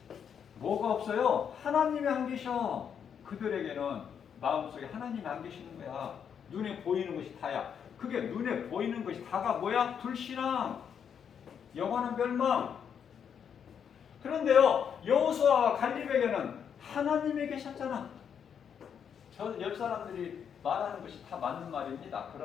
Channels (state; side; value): quieter; right; 7.7 dB